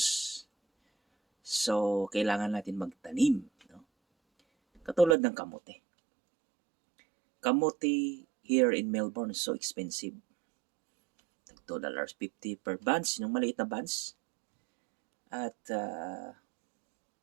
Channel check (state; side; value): drops out; left; at 5.2 s